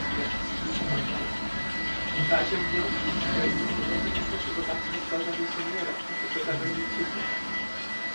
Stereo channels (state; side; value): inverted; both; correlation -1.00